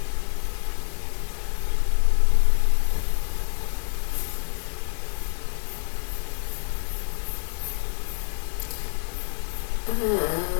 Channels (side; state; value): right; silent; digital silence